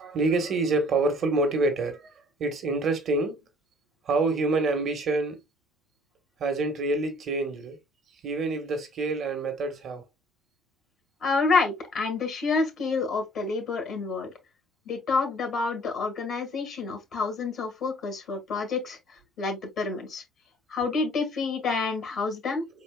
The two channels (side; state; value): both; normal; correlation 0.55